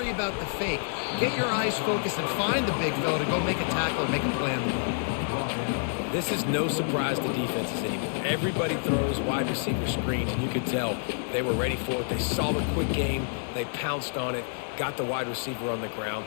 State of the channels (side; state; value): right; silent; digital silence